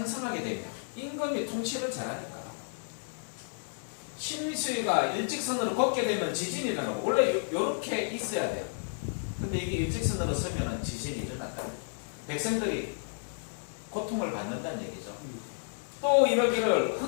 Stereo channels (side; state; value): right; silent; digital silence